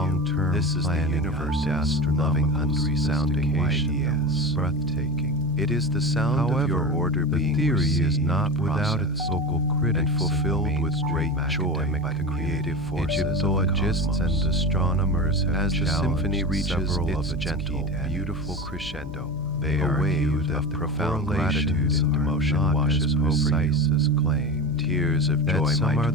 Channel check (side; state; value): left; noise; hum, 13 dB below the sound